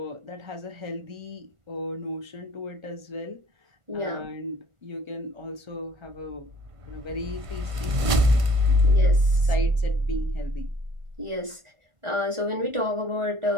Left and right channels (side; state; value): left; late; 1.5 ms